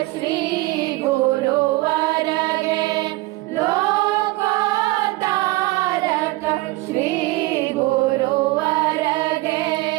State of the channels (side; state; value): left; quieter; 20.3 dB